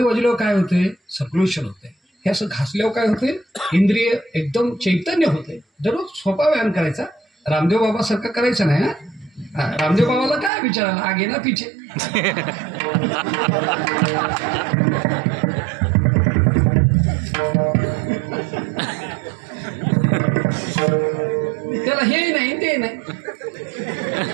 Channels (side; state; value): left; drops out; at 10.5 s